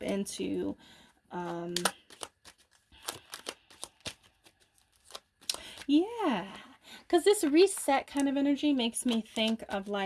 into yeah, because this reset kind of energy makes me think of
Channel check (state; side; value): identical; both; correlation 1.00